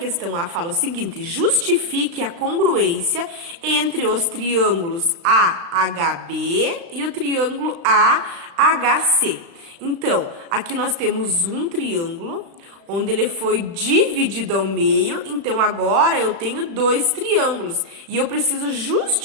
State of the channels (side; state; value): left; late; 36 ms